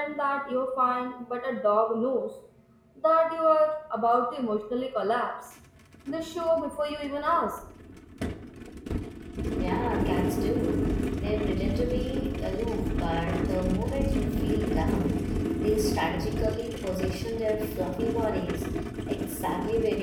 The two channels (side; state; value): both; identical; correlation 1.00